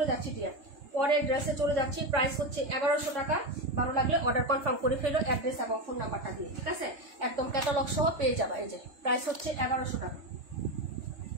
যাচ্ছি ডিয়ার, পরের ড্রেসে চলে যাচ্ছি। প্রাইস হচ্ছে 1100 টাকা। ভালো লাগলে অর্ডার কনফার্ম করে ফেলো, অ্যাড্রেস এবং ফোন নাম্বারটা দিয়ে, ঠিক আছে। একদম ক্যাটালগ সহ পেয়ে যাবা। এই যে প্রাইস হচ্ছে 1100 টাকা।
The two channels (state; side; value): late; left; 3.3 ms